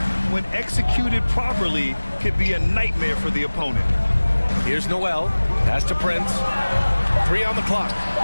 when executed properly, could be a nightmare for the opponent. Here's Noel. Pass to Prince. 3 on the clock.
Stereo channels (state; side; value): inverted; both; correlation -1.00